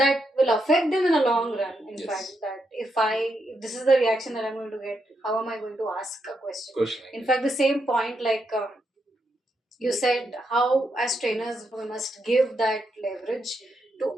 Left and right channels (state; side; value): normal; both; correlation 0.81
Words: will affect them in a long run. In, yes, fact, that if this is the reaction that I'm going to get, how am I going to ask a question? In fact, the same point, like you said, how as trainers we must give that leverage